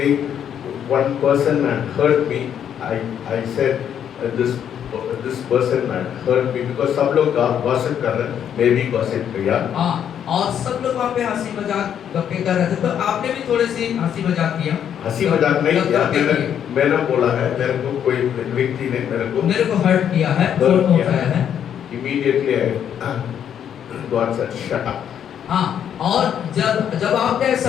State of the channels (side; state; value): right; quieter; 9.1 dB